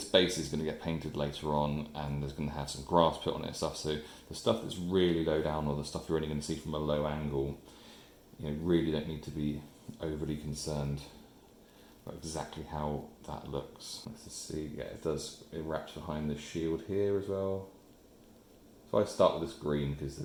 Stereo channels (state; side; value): identical; both; correlation 1.00